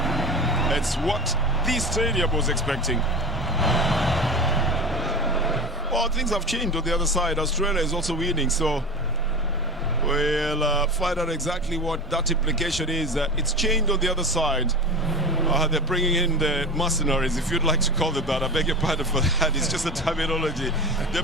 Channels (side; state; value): both; normal; correlation 0.29